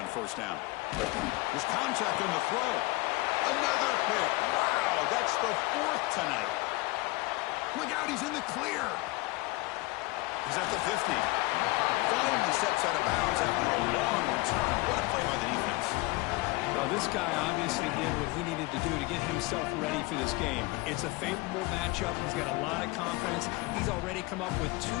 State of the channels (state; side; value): quieter; right; 22.7 dB